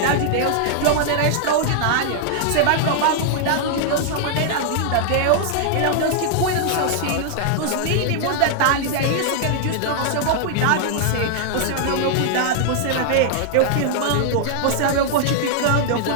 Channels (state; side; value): different; both; correlation -0.01